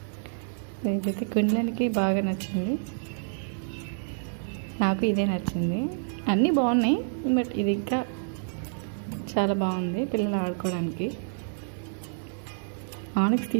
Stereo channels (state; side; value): silent; left; digital silence